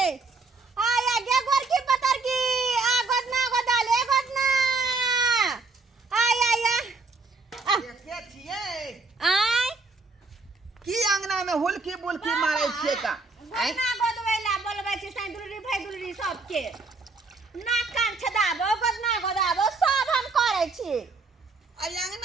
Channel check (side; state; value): left; quieter; 3.8 dB